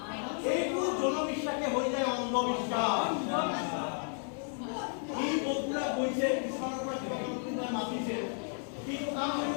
এইটো জনবিশ্বাসে হৈ যায় অন্ধবিশ্বাস ই বস্তুৰা গৈছে পিছফালৰ পৰা কিবা কোনোবাই মাতিছে কিন্তু কাম কৰিব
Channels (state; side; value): silent; right; 56 dB below the other